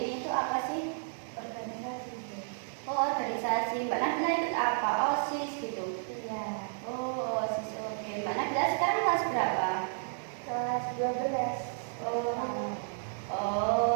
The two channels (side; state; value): left; silent; digital silence